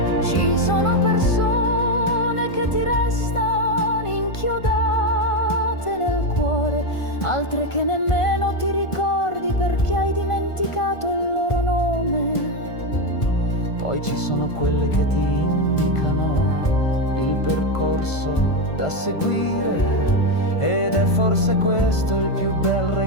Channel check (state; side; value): late; right; 1.5 ms